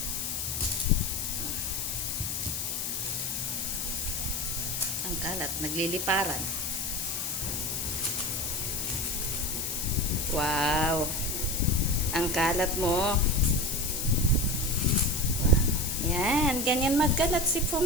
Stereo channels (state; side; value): noise; left; hiss, 2 dB below the sound